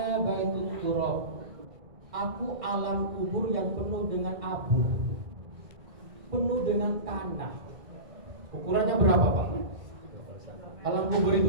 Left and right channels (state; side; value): late; left; 2.0 ms